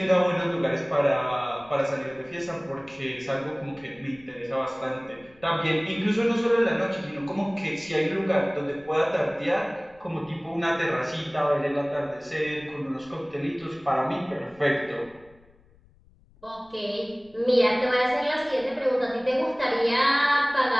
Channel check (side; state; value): left; noise; rumble, 29 dB below the sound